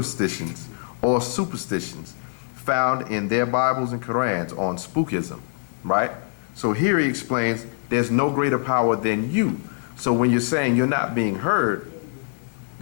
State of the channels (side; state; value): right; silent; 60 dB below the other